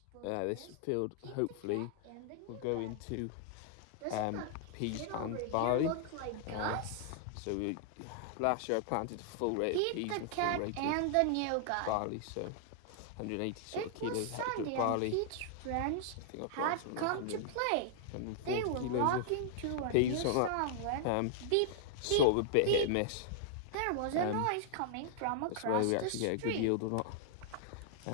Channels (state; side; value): different; both; correlation -0.01